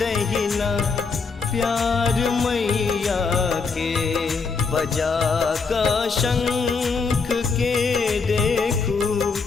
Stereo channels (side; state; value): right; quieter; 4.8 dB